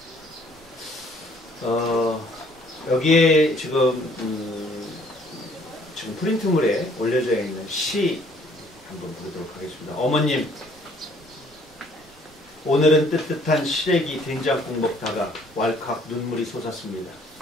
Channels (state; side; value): normal; both; correlation 0.60